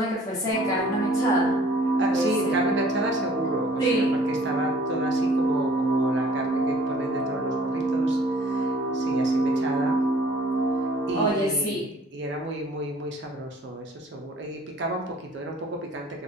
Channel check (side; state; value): both; normal; correlation 0.54